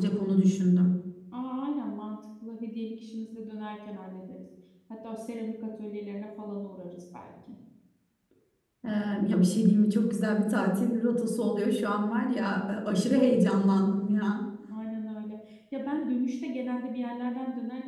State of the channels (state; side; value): identical; both; correlation 1.00